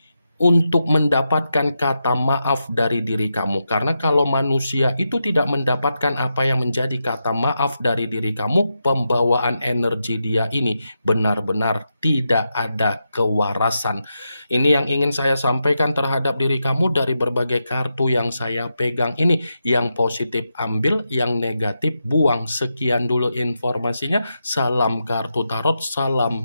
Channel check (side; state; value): both; inverted; correlation -0.86